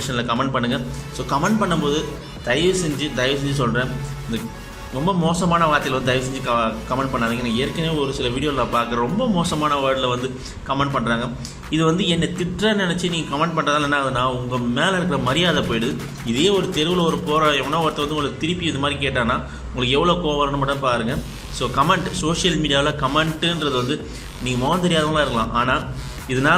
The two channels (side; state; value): both; identical; correlation 1.00